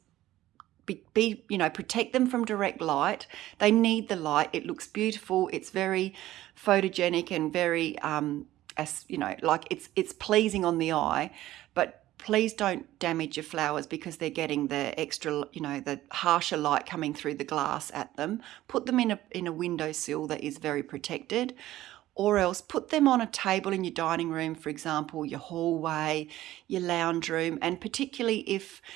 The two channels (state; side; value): quieter; left; 15.0 dB